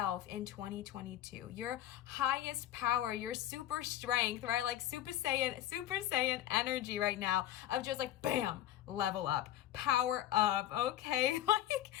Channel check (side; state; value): right; quieter; 12.7 dB